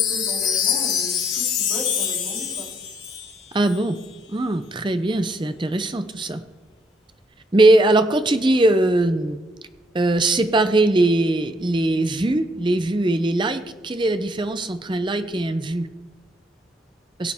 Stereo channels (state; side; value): normal; both; correlation 0.70